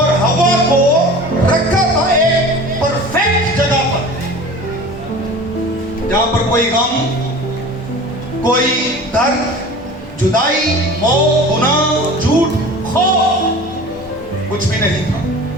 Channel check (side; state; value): both; normal; correlation 0.39